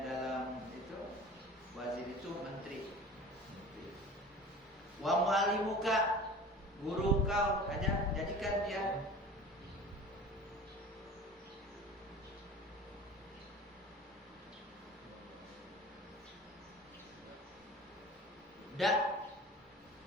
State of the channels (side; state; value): both; normal; correlation 0.39